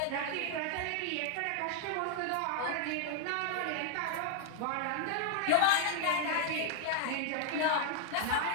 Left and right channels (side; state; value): both; different; correlation 0.00